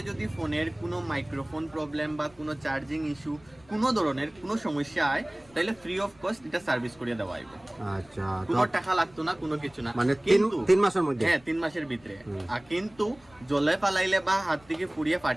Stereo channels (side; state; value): left; noise; rumble, 27 dB below the sound